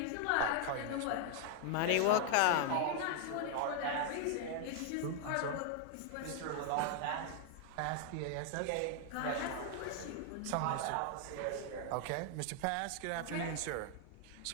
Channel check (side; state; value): both; different; correlation 0.00